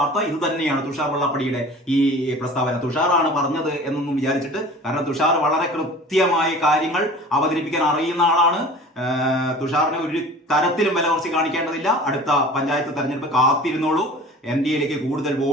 ഇത് തന്നെയാണ്. തുഷാർ വെള്ളാപ്പള്ളിയുടെ ഈ പ്രസ്താവന തുഷാറാണ് പറഞ്ഞത് എന്നൊന്നും വിചാരിച്ചിട്ട്, കാരണം തുഷാർ വളരെ കൃത്യമായ കാര്യങ്ങൾ അവതരിപ്പിക്കാൻ അറിയുന്ന ആളാണ്. തുഷാറിനെ ഒരു തരത്തിലും വില കുറച്ച് കാണിക്കേണ്ടതില്ല. അടുത്ത പഞ്ചായത്ത് തെരഞ്ഞെടുപ്പ് കാത്തിരുന്നോളൂ. NDAയിലേക്ക് കൂടുതൽ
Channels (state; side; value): normal; both; correlation 0.42